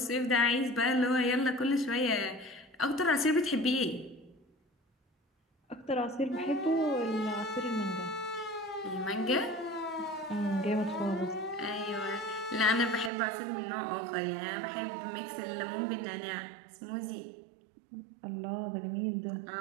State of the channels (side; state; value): left; drops out; at 13.1 s